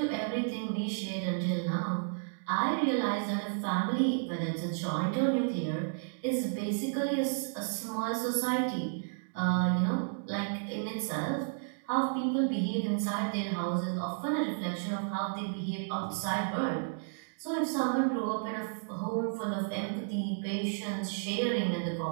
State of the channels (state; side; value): silent; left; digital silence